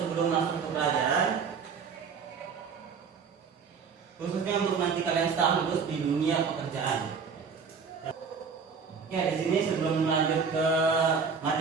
masuk ke pelajaran, khususnya untuk nanti kalian setelah lulus di dunia pekerjaan. Ya, di sini sebelum lanjut ke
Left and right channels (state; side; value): quieter; left; 5.9 dB